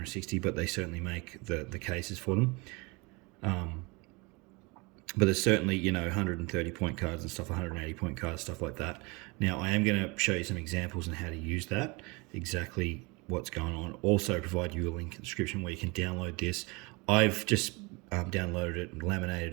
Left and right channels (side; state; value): left; quieter; 27.3 dB